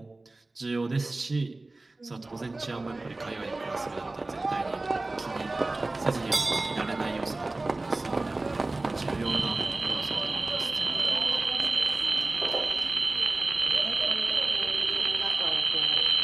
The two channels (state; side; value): quieter; left; 3.1 dB